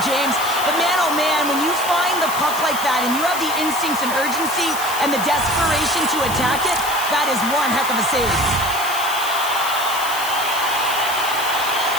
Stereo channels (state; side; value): noise; left; hiss, 7 dB below the sound